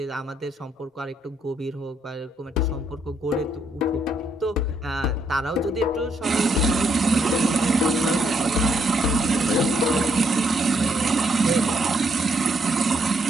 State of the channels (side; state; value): both; normal; correlation 0.73